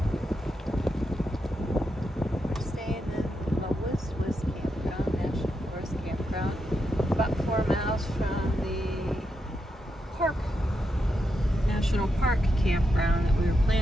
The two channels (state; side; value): normal; both; correlation 0.84